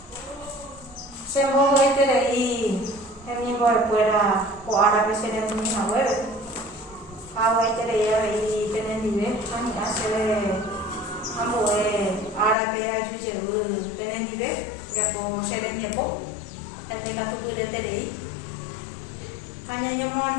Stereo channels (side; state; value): right; drops out; at 12.6 s